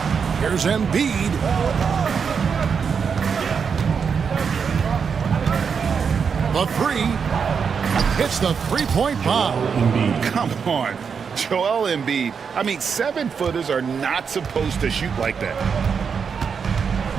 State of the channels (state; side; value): quieter; left; 6.3 dB